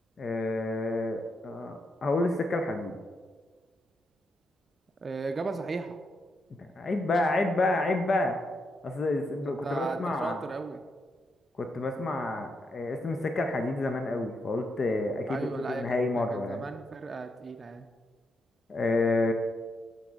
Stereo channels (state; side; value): normal; both; correlation 0.81